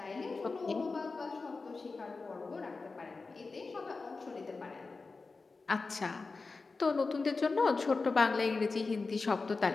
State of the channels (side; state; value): right; quieter; 4.0 dB